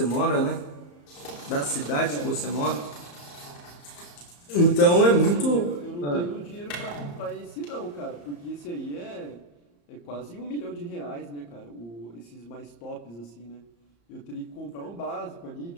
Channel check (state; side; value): late; right; 34 ms